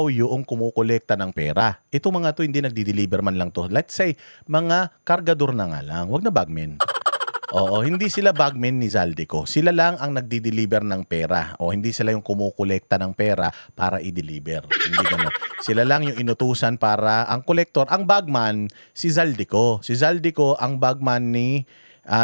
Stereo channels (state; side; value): inverted; both; correlation -1.00